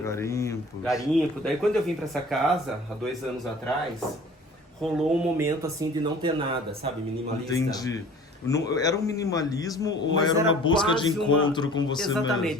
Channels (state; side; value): normal; both; correlation 0.46